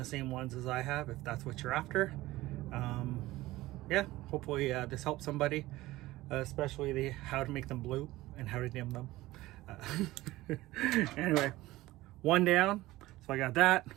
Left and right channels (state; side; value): quieter; left; 17.8 dB